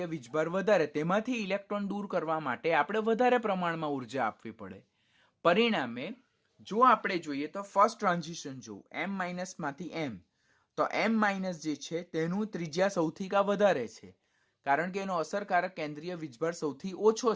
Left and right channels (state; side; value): identical; both; correlation 1.00